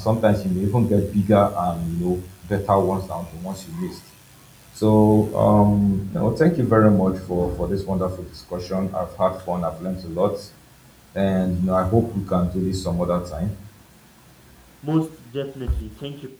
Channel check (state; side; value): identical; both; correlation 1.00